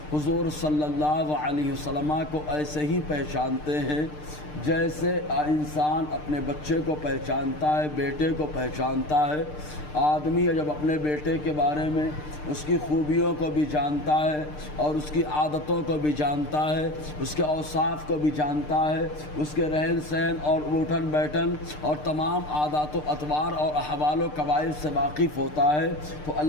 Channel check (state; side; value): late; right; 6.6 ms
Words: حضور صلی اللہ علیہ وسلم کو ایسے ہی پہچانتے ہیں جیسے انسان اپنے بچے کو پہچانتا ہے، بیٹے کو پہچانتا ہے۔ آدمی جب اپنے بیٹے کے بارے میں اس کی خوبیوں کو بھی جانتا ہے اور اس کی عادتوں کو بھی جانتا ہے، اس کے اوصاف کو بھی جانتا ہے، اس کے رہن سہن اور اٹھن بیٹھن اور تمام عادات و اطوار اور احوال و قواعد سے واقف ہوتا ہے، تو